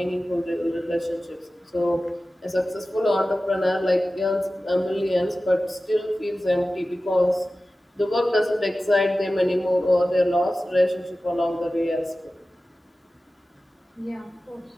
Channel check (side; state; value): both; normal; correlation 0.95